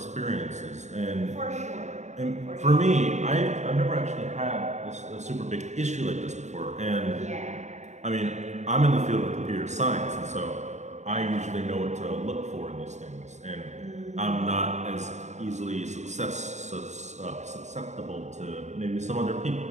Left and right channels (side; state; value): left; late; 0.34 ms